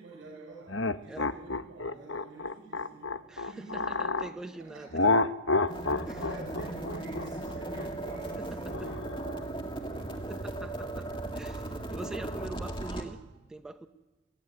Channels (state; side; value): normal; both; correlation -0.14